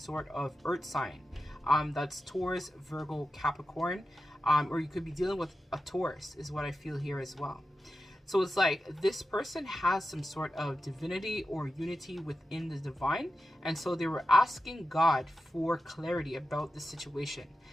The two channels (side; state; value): both; normal; correlation 0.91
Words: of earth sign that's Taurus, Virgo, Capricorn, or you could be dealing with a Taurus is what I feel here as well. So it's like this person has some sort of divinity or unity within the divine. And so they were asking God for clarity about the situation.